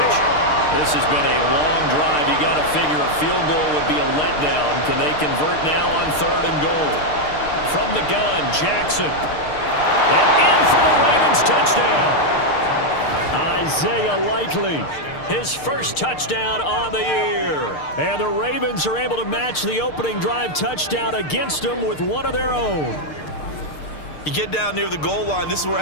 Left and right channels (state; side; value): late; right; 6.6 ms